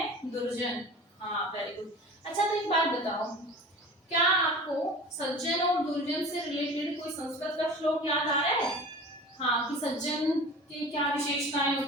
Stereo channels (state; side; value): normal; both; correlation 0.38